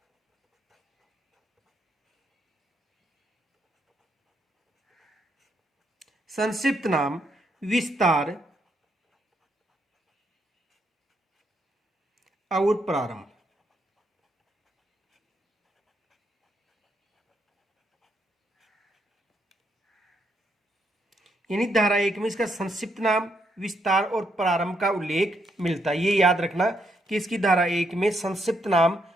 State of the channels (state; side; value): normal; both; correlation 0.76